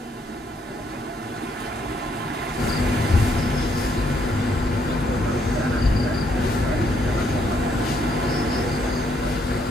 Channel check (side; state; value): both; normal; correlation 0.71